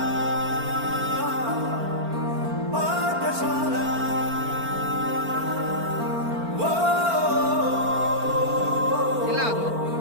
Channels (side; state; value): left; late; 4.4 ms